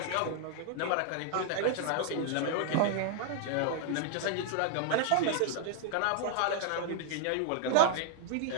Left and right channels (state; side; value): different; both; correlation -0.01